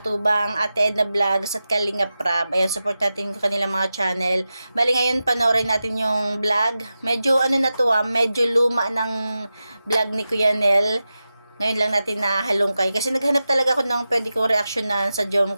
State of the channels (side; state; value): both; inverted; correlation -0.92